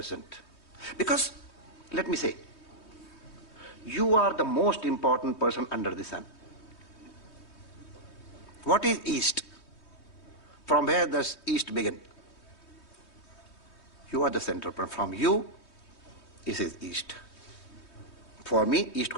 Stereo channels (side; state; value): right; late; 3.2 ms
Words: Because, let me say, you are the most important person under the sun. What is East? From where does East begin? You are the center point. From you, this is East. For me, East